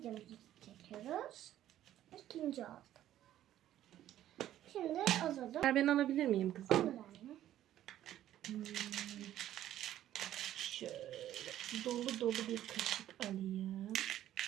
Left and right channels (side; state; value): left; quieter; 12.4 dB